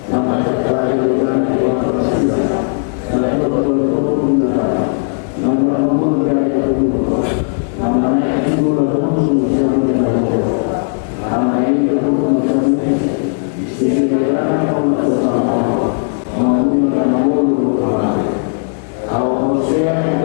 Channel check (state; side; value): silent; right; digital silence